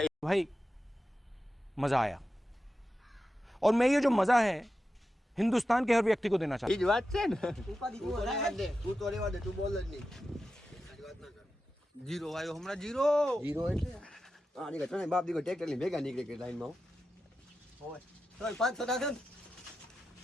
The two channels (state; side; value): normal; both; correlation 0.91